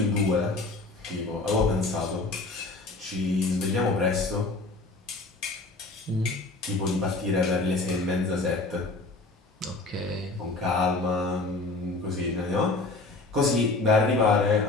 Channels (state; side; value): quieter; right; 3.3 dB